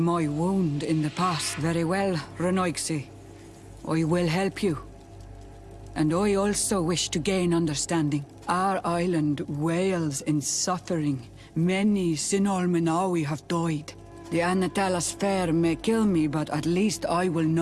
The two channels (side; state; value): both; identical; correlation 1.00